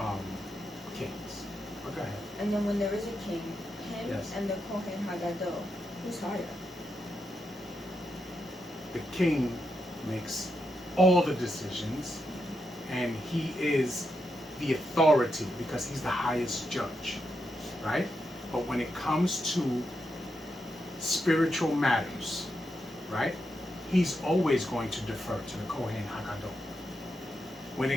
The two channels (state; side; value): normal; both; correlation 0.84